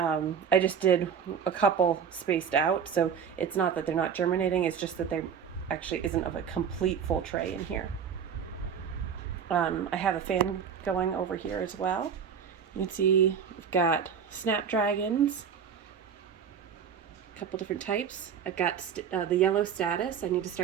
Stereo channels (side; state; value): left; quieter; 7.3 dB